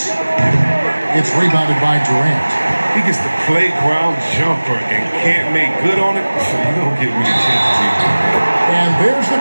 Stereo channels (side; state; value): both; inverted; correlation -1.00